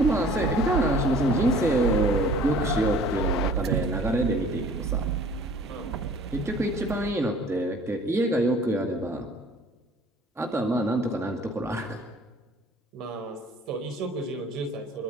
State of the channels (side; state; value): both; normal; correlation 0.51